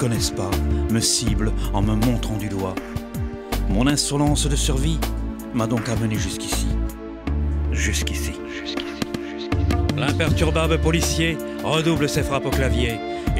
pas me ciblent en me montrant du doigt. Mon insolence de survie m'a donc amené jusqu'ici. Jusqu'ici. L'imperturbable policier redouble ses frappes au clavier.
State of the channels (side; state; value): both; identical; correlation 1.00